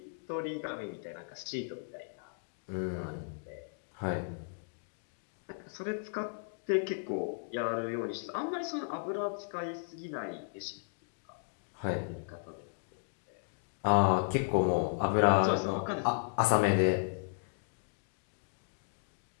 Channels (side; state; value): right; silent; digital silence